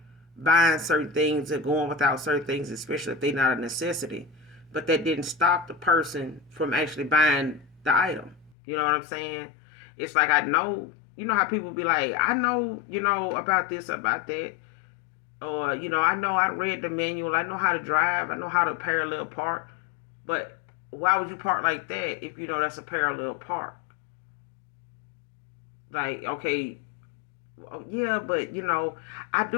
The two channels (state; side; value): drops out; right; at 8.6 s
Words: buying certain things or going without certain things, especially if they're not a necessity. But that didn't stop the person from actually buying the item. You know what I'm saying? It's like, I know, how people be like, I know, about this, about that. Or, I know I read the manual. I know how to drive. I know how to parallel park. But why would you park like that if you know that's a parallel park? Like, okay, yeah, but, I